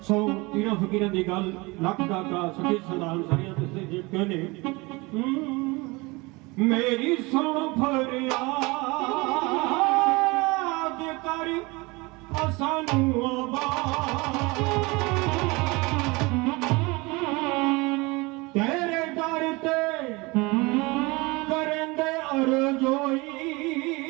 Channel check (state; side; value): quieter; left; 24.8 dB